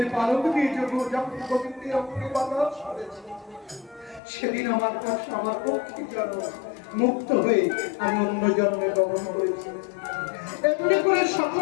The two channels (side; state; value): right; drops out; at 4.2 s